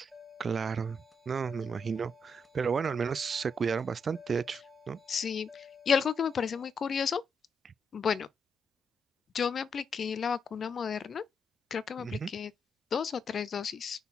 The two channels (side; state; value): both; normal; correlation 0.79